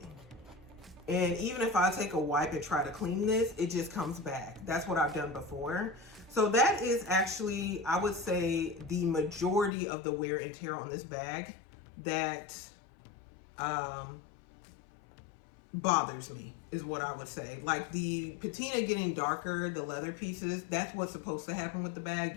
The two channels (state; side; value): drops out; right; at 9.7 s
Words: And even if I take a wipe and try to clean this, it just comes back. That's what I've done before. So that is actually, I would say, the majority of the wear and tear on this bag that bothers me, is what I would say. Like the patina getting darker, the leather pieces, that's what's supposed to happen with the bag.